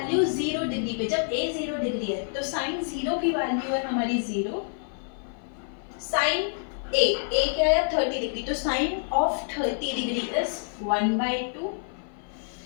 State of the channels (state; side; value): silent; right; 55 dB below the other